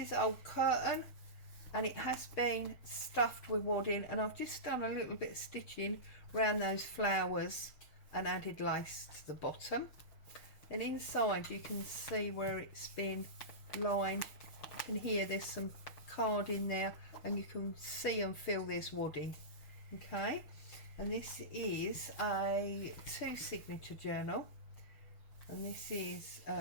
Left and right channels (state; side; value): late; right; 6.1 ms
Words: old curtain, and it has been stuffed with wadding, and I've just done a little bit of stitching around those flowers and added lace to the bottom. And inside you can see where it's been lined. You can hear there's some card in there, and you can see and feel there's wadding. Okay, and this is a 2 signature journal, and this is